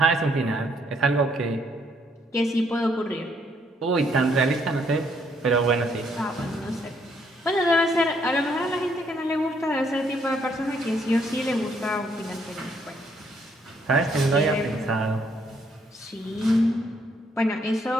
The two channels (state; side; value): normal; both; correlation 0.70